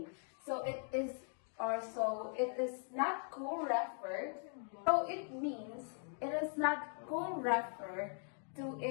So it is not co-referred. So it means it is not co-referred to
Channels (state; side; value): silent; right; 51 dB below the other